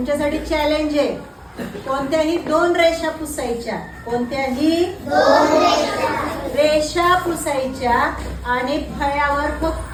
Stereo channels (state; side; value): identical; both; correlation 1.00